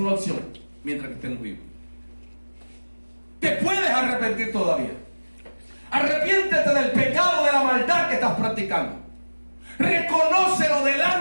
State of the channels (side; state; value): both; inverted; correlation -1.00